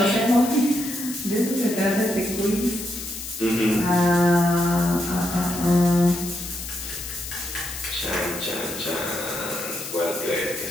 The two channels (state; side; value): noise; left; hiss, 9 dB below the sound